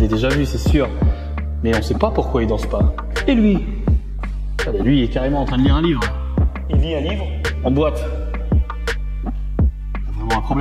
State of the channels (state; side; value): identical; both; correlation 1.00